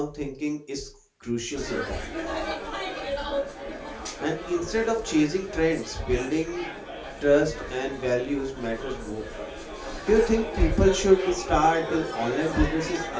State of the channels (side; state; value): both; identical; correlation 1.00